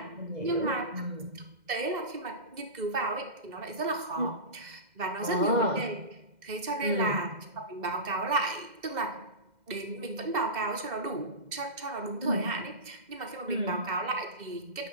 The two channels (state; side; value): late; left; 2.1 ms